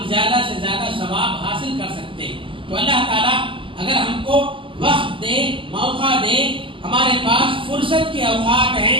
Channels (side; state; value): left; late; 0.25 ms